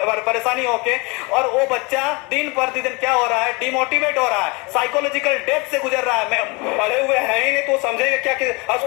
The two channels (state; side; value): quieter; right; 28.3 dB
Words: परेशानी होके, और वो बच्चा दिन प्रतिदिन क्या हो रहा है, डिमोटिवेट हो रहा है, साइकोलॉजिकल डेथ से गुजर रहा है। पढ़े हुए हैं ही नहीं तो समझेंगे क्या कि